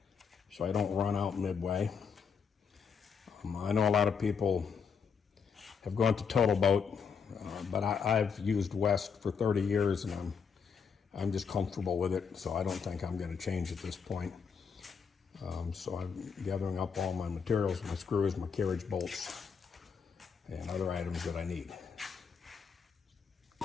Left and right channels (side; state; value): right; quieter; 6.2 dB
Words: so I don't run out midway. I know a lot of people have gone to Total Boat, but I've used West for 30 years and I'm just comfortable with it, so I don't think I'm going to change at this point. So I'm gathering up all my materials, my screws, my carriage bolts, and other items that I need.